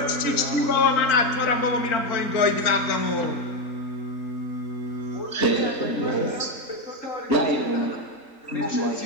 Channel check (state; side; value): late; right; 3.8 ms